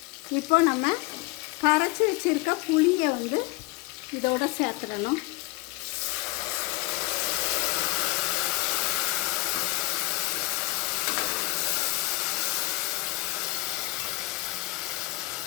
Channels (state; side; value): quieter; right; 21.3 dB